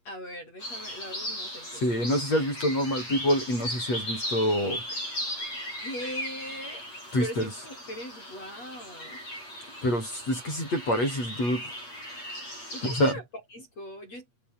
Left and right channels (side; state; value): right; late; 8.4 ms